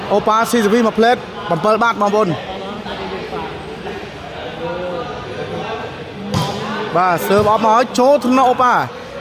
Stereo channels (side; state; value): both; identical; correlation 1.00